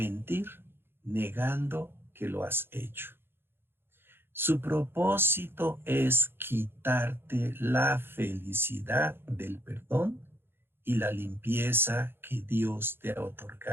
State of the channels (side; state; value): left; late; 0.11 ms